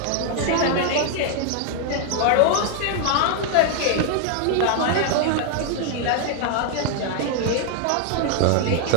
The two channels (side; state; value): both; different; correlation 0.00